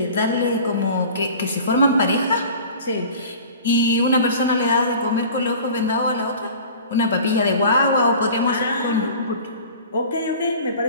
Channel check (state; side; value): inverted; both; correlation -0.42